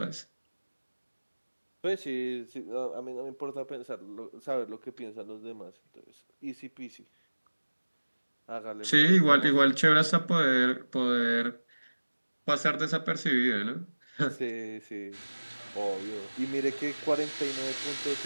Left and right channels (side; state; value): both; inverted; correlation -1.00